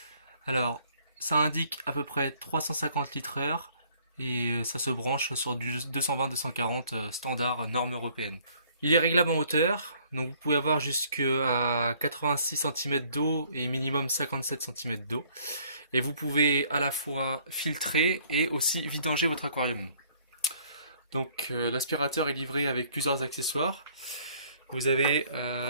Alors ça indique à peu près 350 litres heure et ça se branche sur du 220-240 standard norme européenne. Il est réglable en hauteur, donc vous pouvez avoir jusqu'à 86 cm d'eau et minimum 57 cm d'eau. Et vous pouvez à la fois filtrer et aussi vidanger votre aquarium. Donc l'aspirateur est livré avec plusieurs accessoires. Vous avez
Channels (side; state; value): both; inverted; correlation -0.60